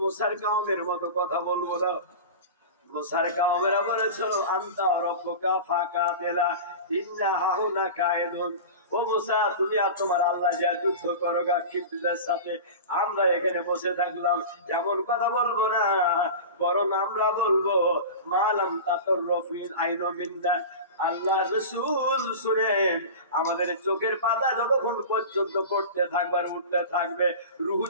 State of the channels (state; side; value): inverted; both; correlation -0.31